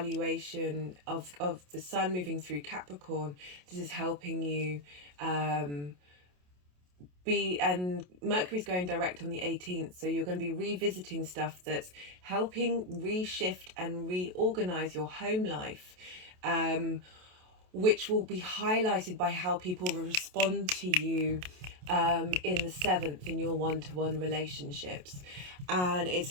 of the Sun moving through Capricorn. This is helping you and Mercury's going direct on the 18th, so you're going to be revisiting stuff that's helping reshift and reorganize your home life, which will be highlighted by how people respond to you in the 7th in your one-to-one relationships. And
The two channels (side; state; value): left; late; 28 ms